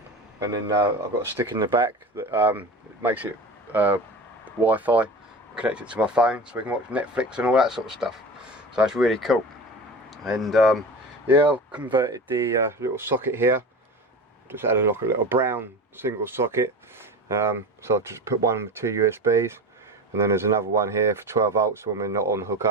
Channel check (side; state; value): both; normal; correlation 0.31